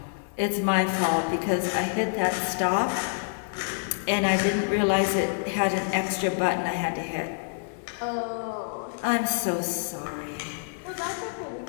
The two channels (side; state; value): right; silent; 60 dB below the other